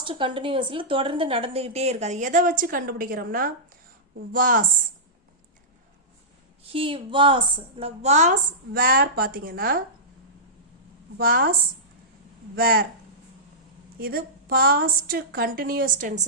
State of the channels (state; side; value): normal; both; correlation -0.16